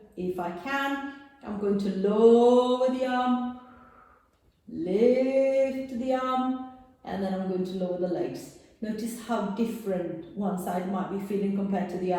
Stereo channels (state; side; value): identical; both; correlation 1.00